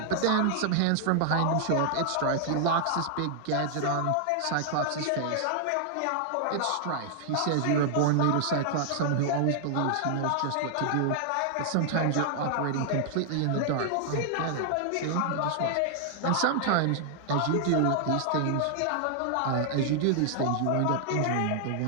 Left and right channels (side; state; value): both; different; correlation -0.01